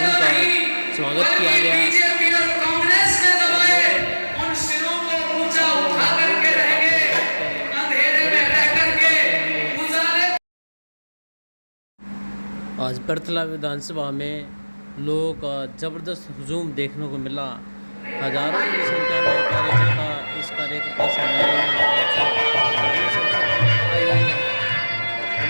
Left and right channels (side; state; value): both; inverted; correlation -1.00